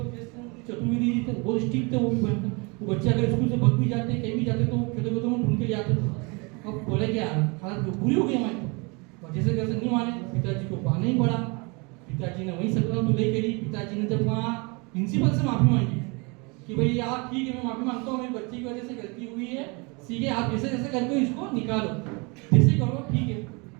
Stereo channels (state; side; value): quieter; left; 29.7 dB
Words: चतुर्वेदी जी थे, बहुत स्ट्रिक्ट थे, वो भी भयंकर, वो बच्चे अगर स्कूल से भग भी जाते, कहीं भी जाते तो खेतों खेतों में ढूंढ के ले आते थे। अब बोले क्या हालत बुरी हो गई हमारी, तो जैसे कैसे नहीं माने, पिताजी को बहाना ही पड़ा, पिताजी ने वही सकला तो ले करी। पिताजी ने जब वहाँ प्रिंसिपल से माफी मांगी कि भाई आप ठीक है, मैं माफी मांगता हूँ, मेरी बच्ची की वजह से गलती हुई है, सीधे आप जैसे जैसे करके इसको निकालो, जैसे करो ठीक है।